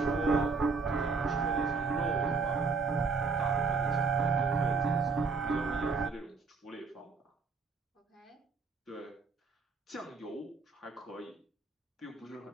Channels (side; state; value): left; quieter; 4.6 dB